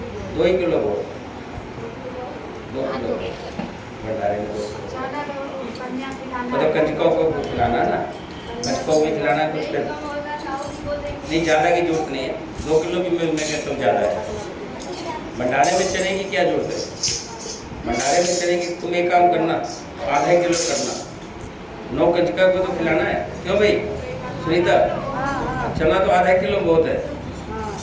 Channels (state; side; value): identical; both; correlation 1.00